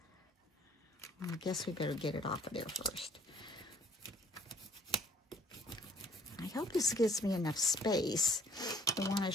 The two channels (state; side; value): normal; both; correlation 0.57